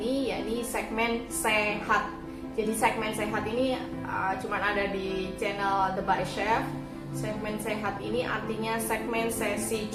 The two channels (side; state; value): both; identical; correlation 1.00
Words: ini, yakni segmen sehat. Jadi segmen sehat ini cuman ada di channel The Bari Chef. Segmen sehat ini artinya segmen sesi